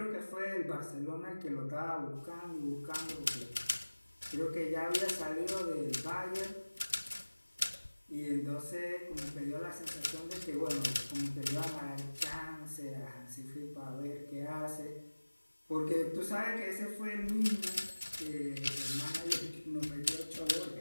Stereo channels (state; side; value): inverted; both; correlation -1.00